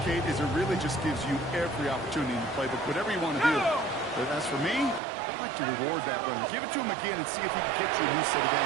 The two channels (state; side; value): drops out; left; at 5.0 s